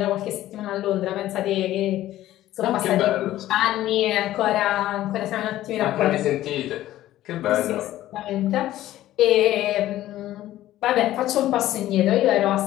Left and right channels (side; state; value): right; quieter; 14.2 dB